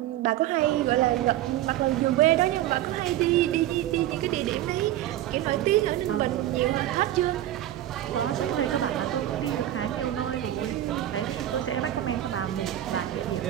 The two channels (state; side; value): quieter; left; 13.2 dB